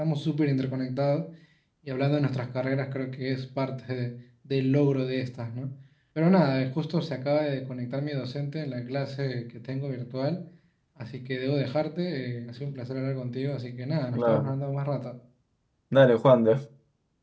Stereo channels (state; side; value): identical; both; correlation 1.00